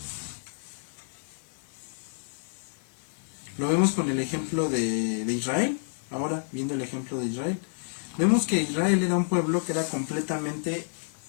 Lo vemos con el ejemplo de Israel, ahora viendo el ejemplo de Israel. Vemos que Israel era un pueblo que era completamente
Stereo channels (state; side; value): silent; right; digital silence